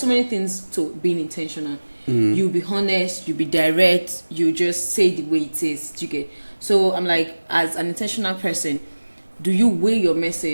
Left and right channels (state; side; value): inverted; both; correlation -1.00